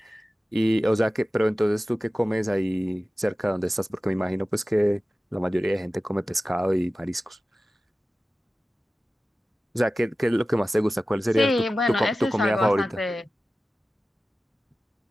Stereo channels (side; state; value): both; normal; correlation 0.95